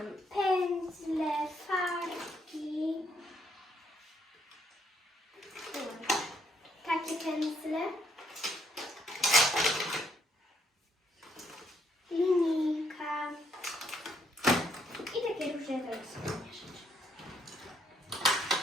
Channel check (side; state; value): both; normal; correlation 0.71